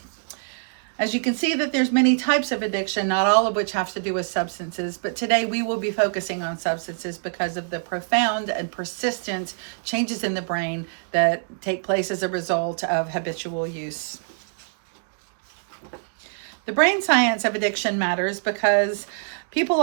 As you can see that there's many types of addiction, not all of which have to do with substances, but today we will be focusing on substances because of the profound and persistent changes in the brain that take place as a result of habitual use. The brain science of addiction matters because people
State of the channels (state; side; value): silent; left; digital silence